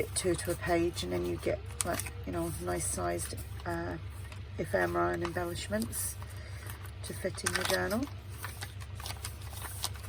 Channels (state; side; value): identical; both; correlation 1.00